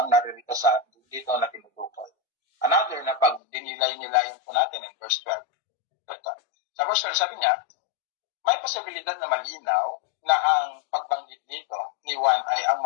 naririto sa dito na tinutukoy. Another na pag dinilay-nilayan po natin in verse 12. Sa verse 12, sabi niya, may posibilidad na malinaw na ang pagbanggit dito ni Juan ay ang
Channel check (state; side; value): drops out; right; at 3.4 s